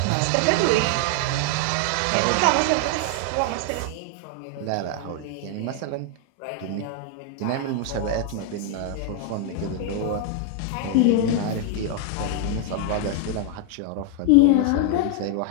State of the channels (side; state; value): both; different; correlation 0.00